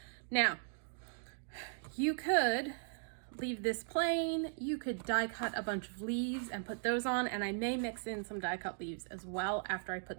Now, you could leave this plain, you could die cut a bunch of leaves and put those on, and I may mix in some die cut leaves as well after I put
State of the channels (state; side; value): silent; left; digital silence